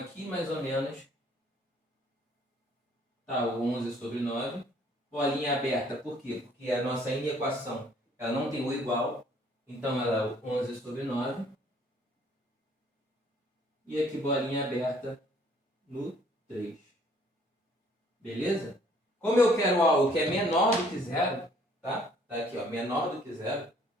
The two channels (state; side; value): normal; both; correlation 0.60